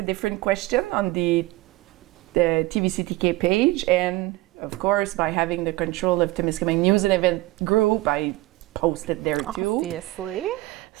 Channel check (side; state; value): left; quieter; 19.4 dB